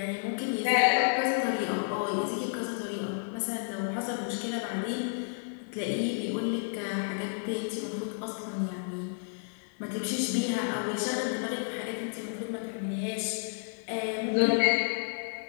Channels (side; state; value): right; silent; 57 dB below the other